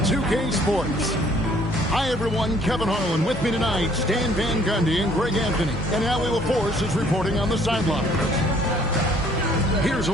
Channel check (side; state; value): both; normal; correlation 0.60